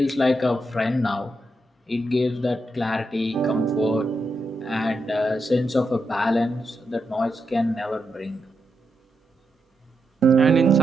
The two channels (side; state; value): both; normal; correlation 0.84